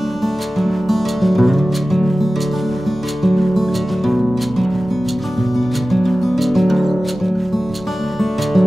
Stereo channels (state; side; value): normal; both; correlation 0.96